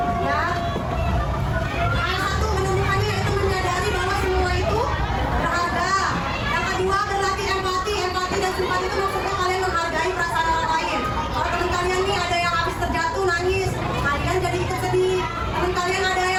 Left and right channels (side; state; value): both; identical; correlation 1.00